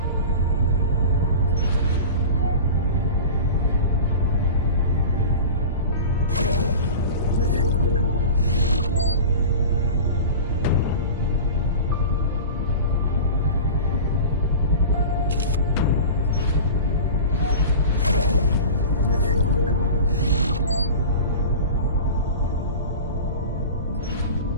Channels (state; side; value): inverted; both; correlation -0.33